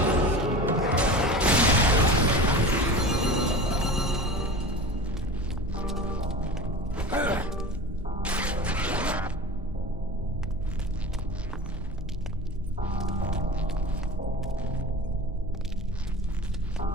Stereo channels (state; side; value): normal; both; correlation 0.33